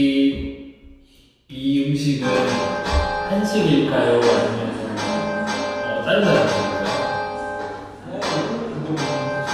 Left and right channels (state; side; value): identical; both; correlation 1.00